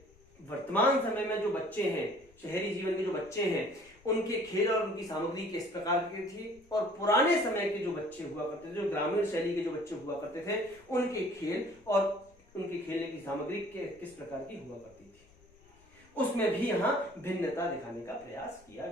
वर्तमान समय में जो बच्चे हैं, शहरी जीवन के जो बच्चे हैं, उनके खेल और उनकी सामग्री किस प्रकार की थी और पुराने समय के जो बच्चे हुआ करते थे, जो ग्रामीण शैली के जो बच्चे हुआ करते थे, उनके खेल और उनके खेलने की सामग्री किस प्रकार की हुआ करती थी, उसमें भी यहां भिन्नता दिखाने का प्रयास किया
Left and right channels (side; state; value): left; noise; rumble, 28 dB below the sound